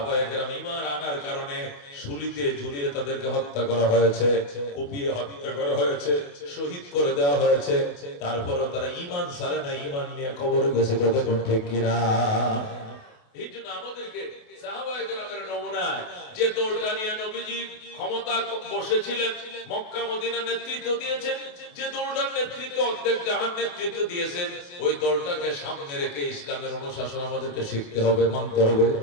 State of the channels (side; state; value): right; late; 28 ms